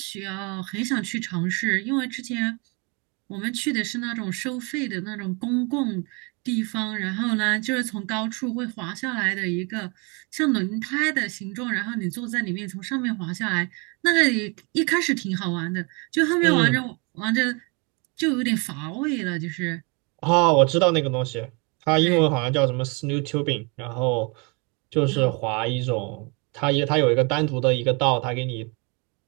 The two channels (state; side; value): quieter; left; 31.4 dB